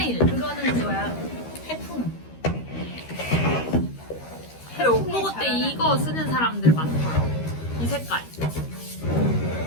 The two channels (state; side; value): late; right; 13 ms